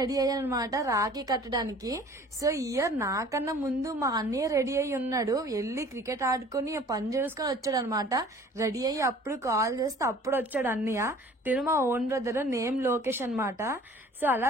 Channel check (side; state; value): both; normal; correlation 0.49